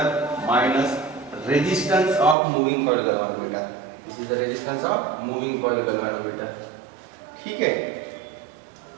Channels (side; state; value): left; drops out; at 2.4 s